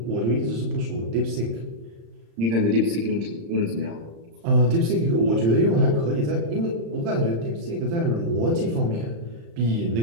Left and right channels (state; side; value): late; left; 35 ms